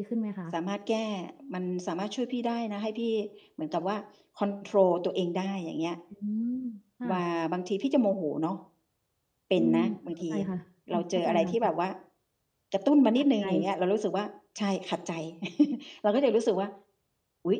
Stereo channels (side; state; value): both; identical; correlation 1.00